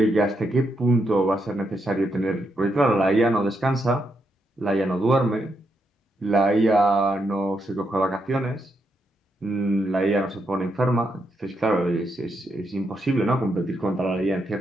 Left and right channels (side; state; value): both; normal; correlation 0.80